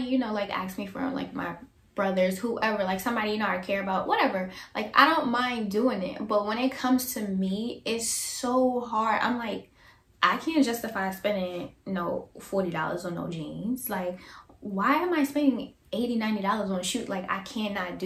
you know, like asked me for like my brothers, whoever, like somebody, you know, I care about, whatever. Like, I don't mind doing it. But when it comes to me, it's so hard. I'm like, I can't justify spending, you know, $40 on no jeans. Like, why am I spending $80, $90 on a shoe? Like, I cannot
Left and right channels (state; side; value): identical; both; correlation 1.00